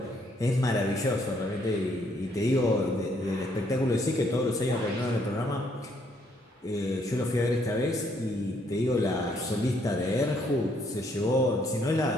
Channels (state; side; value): normal; both; correlation 0.69